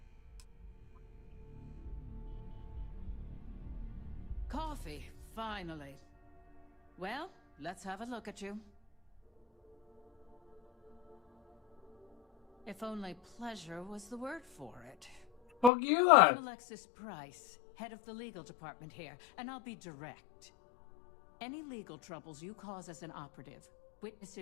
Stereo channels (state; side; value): drops out; right; at 15.7 s